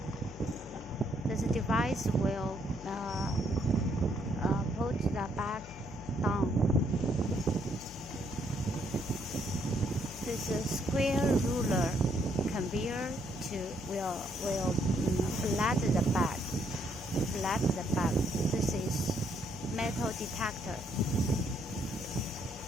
This device will put the bag down. This square ruler conveyor will flat the bag. This is metal detector.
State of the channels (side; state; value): left; noise; hum, 17 dB below the sound